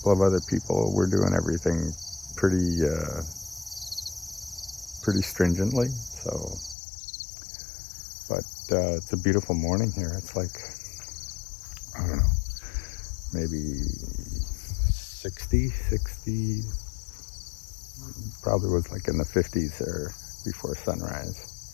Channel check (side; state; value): right; drops out; at 6.8 s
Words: of other people. We're doing everything pretty stringently. So, but it's a beautiful morning here. It's like, I don't know, maybe 60, probably was like in the 50s there before sunrise.